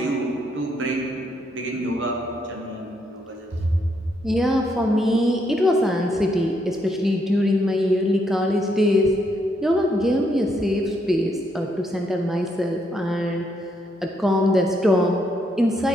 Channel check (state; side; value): normal; both; correlation 0.75